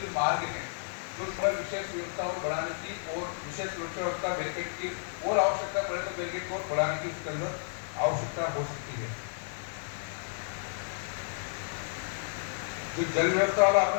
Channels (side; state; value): right; silent; 57 dB below the other